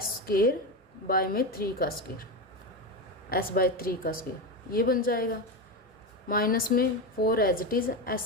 का स्क्वायर, s/3 का स्क्वायर, ये बन जाएगा। माइनस में 4 एज इट इज,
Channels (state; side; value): normal; both; correlation 0.15